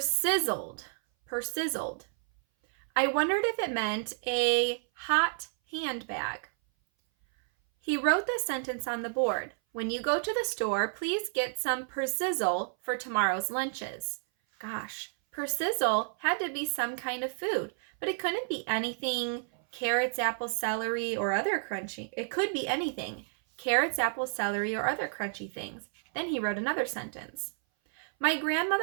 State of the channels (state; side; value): silent; left; 57 dB below the other